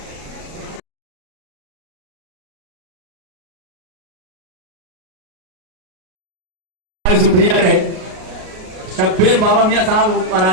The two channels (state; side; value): late; left; 38 ms